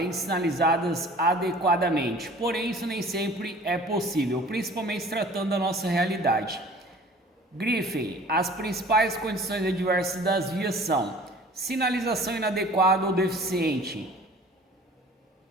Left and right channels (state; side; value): normal; both; correlation 0.47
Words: de sinalizadas adequadamente. Porém, isso nem sempre é possível, principalmente se tratando da nossa realidade. Grifem: as principais condições adversas das vias são sinalização inadequada ou deficiente,